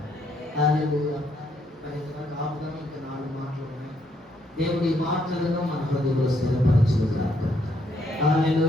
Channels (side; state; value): both; normal; correlation 0.72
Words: హల్లెలూయా. మరి ఆపుదాం. ఇంకా 4 మాటలు ఉన్నాయి. దేవుడి మాటలను మన హృదయంలో స్థిరపరచును గాక.